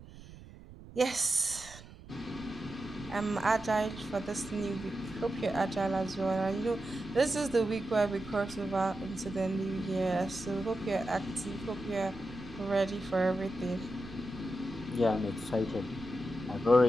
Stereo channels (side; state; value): right; noise; rumble, 17 dB below the sound